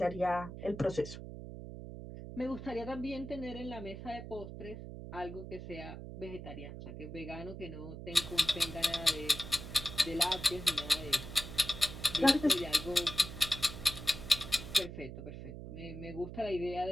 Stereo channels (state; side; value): noise; right; hum, 10 dB below the sound